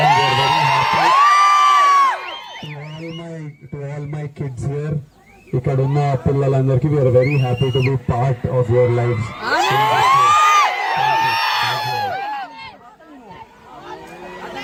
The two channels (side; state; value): both; identical; correlation 1.00